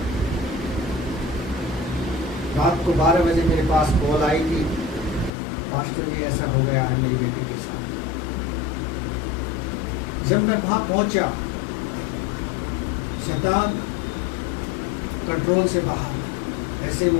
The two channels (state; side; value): drops out; right; at 5.3 s